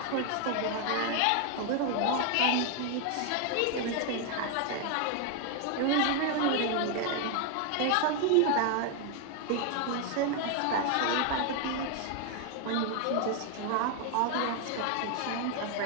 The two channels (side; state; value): both; different; correlation 0.01